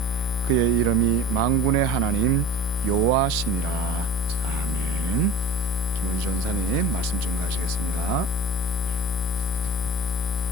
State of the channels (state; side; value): normal; both; correlation 0.39